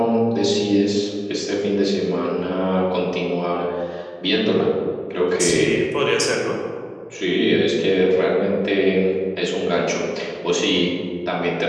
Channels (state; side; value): identical; both; correlation 1.00